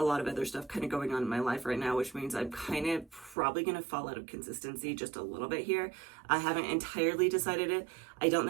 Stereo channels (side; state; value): left; drops out; at 3.4 s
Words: of other stuff kind of going on in my life right now, which means I'm kind of probably going to fall out of consistency just a little bit here. I haven't entirely decided it. I don't